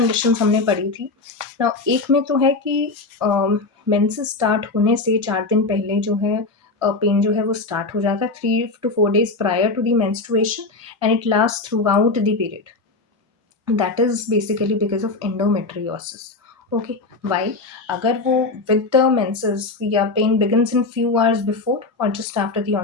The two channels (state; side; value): quieter; right; 3.6 dB